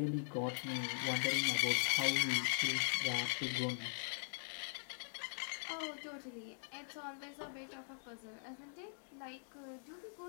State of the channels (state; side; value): silent; right; digital silence